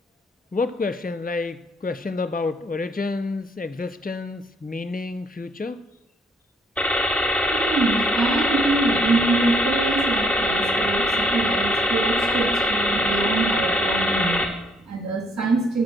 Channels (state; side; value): normal; both; correlation 0.66